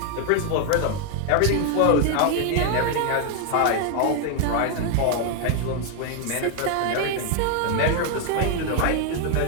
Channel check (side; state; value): both; different; correlation 0.00